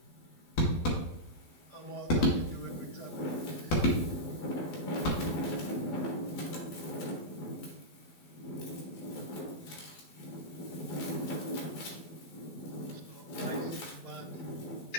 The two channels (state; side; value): late; right; 12 ms